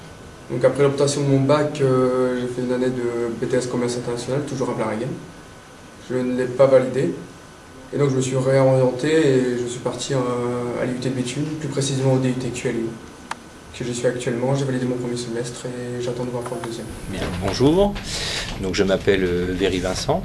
Donc après l'obtention de mon bac, j'ai fait une année de BTS Commerce International, toujours à Blarigan. Je ne l'ai pas validé. Et donc je me suis réorienté et je suis parti à l'IUT de Béthune, plus précisément au DUT QLU, que je suis actuellement. J'ai validé mon premier semestre et j'attends de voir pour le deuxième. Bien, bonjour, donc je m'appelle Véry Vincent,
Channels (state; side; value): identical; both; correlation 1.00